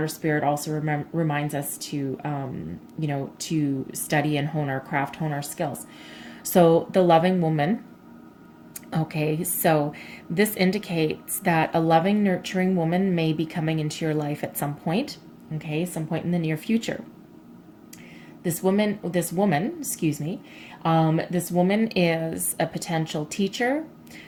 spirit also reminds us to, to study and hone our craft, hone our skills. So the loving woman, okay, so this indicates that a loving, nurturing woman may be coming into your life at some point, okay, some point in the near future. This woman, excuse me, this woman is a potential teacher,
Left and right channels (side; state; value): both; identical; correlation 1.00